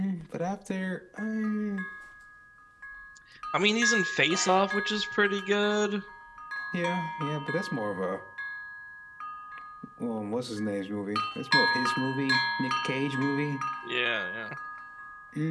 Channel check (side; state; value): both; identical; correlation 1.00